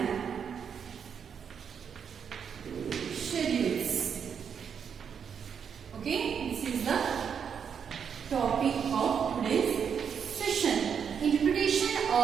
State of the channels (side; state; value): left; quieter; 7.2 dB